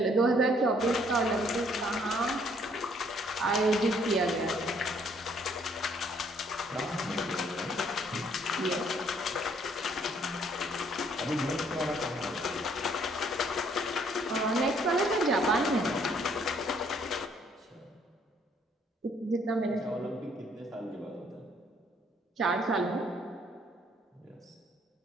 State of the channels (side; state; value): both; normal; correlation 0.64